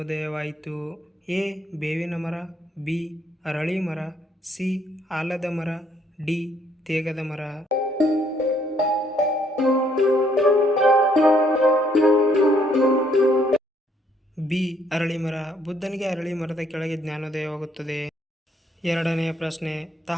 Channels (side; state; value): both; normal; correlation 0.67